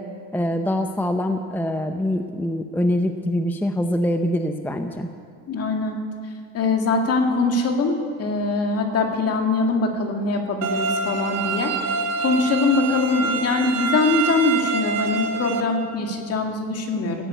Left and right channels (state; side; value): normal; both; correlation 0.33